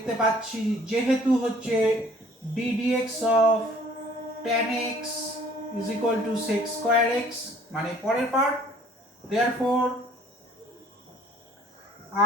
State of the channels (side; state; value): both; normal; correlation 0.56